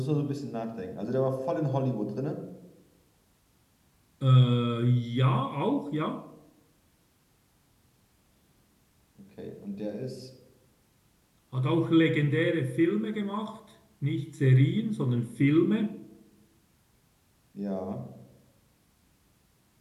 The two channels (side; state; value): both; identical; correlation 1.00